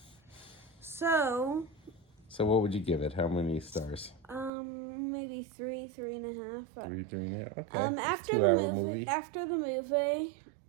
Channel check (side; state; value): left; drops out; at 4.5 s